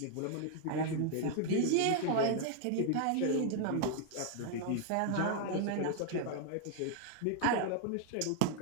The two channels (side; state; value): both; different; correlation 0.00